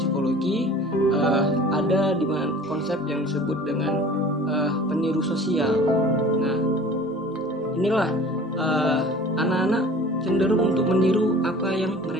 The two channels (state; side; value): normal; both; correlation 0.44